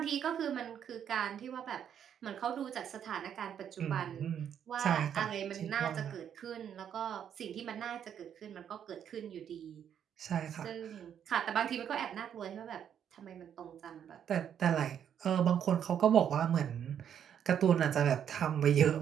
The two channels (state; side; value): quieter; left; 8.9 dB